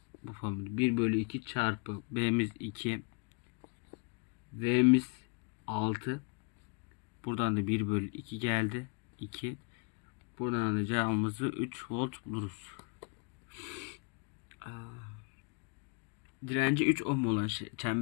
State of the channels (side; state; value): right; quieter; 34.5 dB